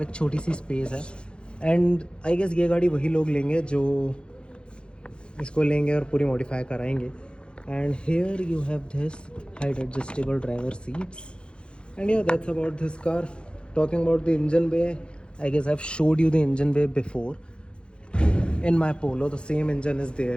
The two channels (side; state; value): right; late; 0.054 ms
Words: छोटी सी space है. And I guess ये गाड़ी वही लोग लेंगे जो इसको लेंगे और पूरी मॉडिफाई कराएंगे. And here you have this height adjustable driver seats. And yeah that's about this car. Talking about the engine bay, I guess I have showed you the engine bay before in my Polo. The same engine is there